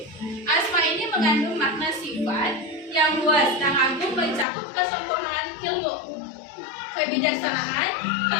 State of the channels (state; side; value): drops out; right; at 4.5 s